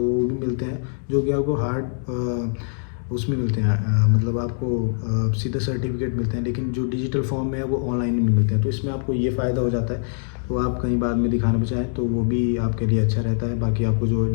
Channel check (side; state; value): right; silent; digital silence